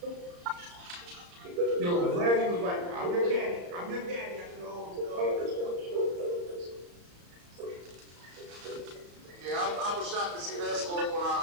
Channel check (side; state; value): left; late; 34 ms